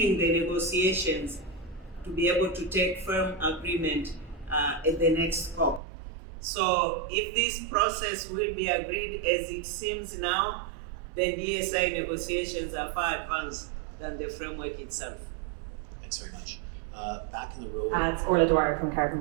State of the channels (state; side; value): drops out; left; at 5.8 s